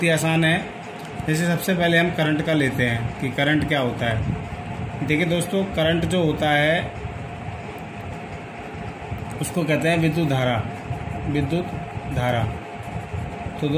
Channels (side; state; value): both; identical; correlation 1.00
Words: ही आसान है। जैसे सबसे पहले हम करंट का लेते हैं कि करंट क्या होता है। देखिए दोस्तों, करंट जो होता है उसको कहते हैं विद्युत धारा। विद्युत धारा। तो